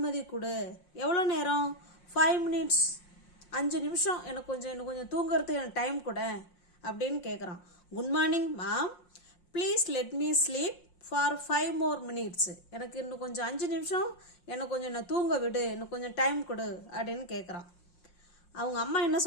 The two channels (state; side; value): late; right; 5.6 ms